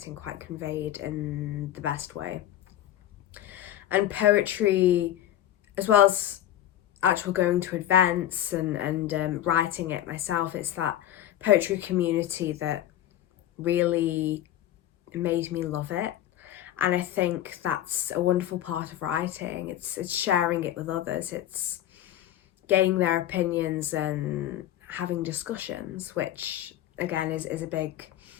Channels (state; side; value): quieter; right; 12.2 dB